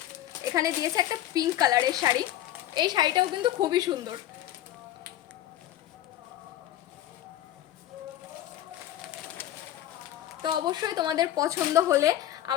এখানে দিয়েছে একটা পিঙ্ক কালারের শাড়ি, এই শাড়িটাও কিন্তু খুবই সুন্দর। তো অবশ্যই তোমাদের পছন্দ হলে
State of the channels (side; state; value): right; quieter; 13.0 dB